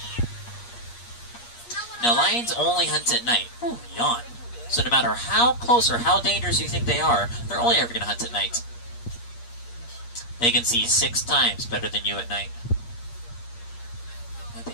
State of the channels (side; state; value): right; late; 8.5 ms